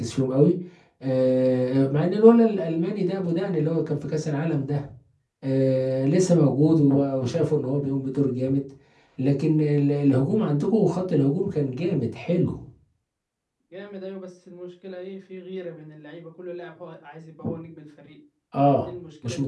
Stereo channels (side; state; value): both; identical; correlation 1.00